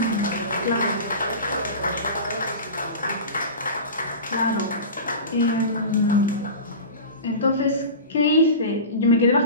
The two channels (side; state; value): both; inverted; correlation -0.31